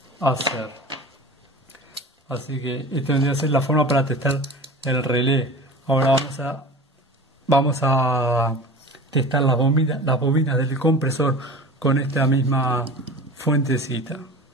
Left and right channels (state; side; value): normal; both; correlation 0.36